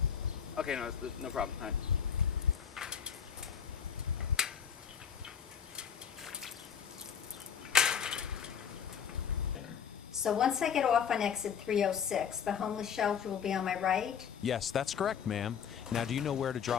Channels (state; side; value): quieter; right; 7.6 dB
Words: Okay, no problem. All right. So once I get off on exit 306, the homeless shelter will be on my right? Yes, that's correct, ma'am. Now, do you know where to